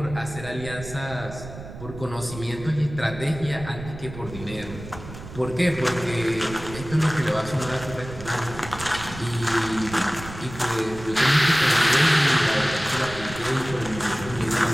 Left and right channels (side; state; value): right; noise; rumble, 13 dB below the sound